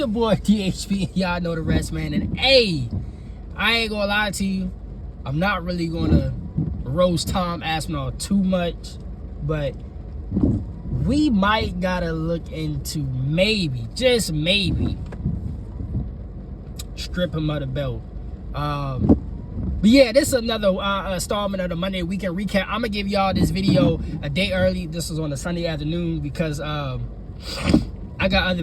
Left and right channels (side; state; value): both; identical; correlation 1.00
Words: boy DHP. Y'all know the rest, man. And hey, I ain't gonna lie to you. I'm not really gonna roast Tom Aspinall too much, but we might gotta look into maybe, just maybe, strip him of the belt. But yeah, this is another installment of the Monday Weekend Recap. I'm gonna give y'all this video a day early. This was on a Sunday afternoon because I got other